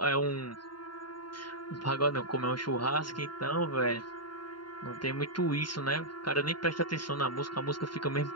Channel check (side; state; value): right; late; 0.72 ms